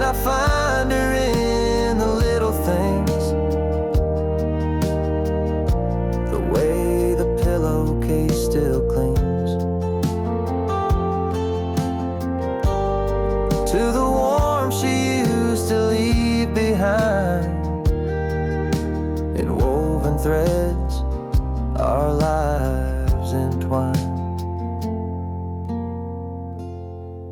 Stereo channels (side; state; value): both; identical; correlation 1.00